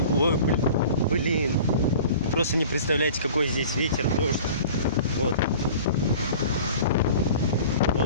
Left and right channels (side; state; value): both; inverted; correlation -0.42